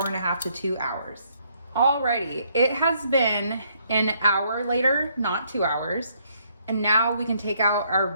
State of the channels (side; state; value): both; inverted; correlation -0.70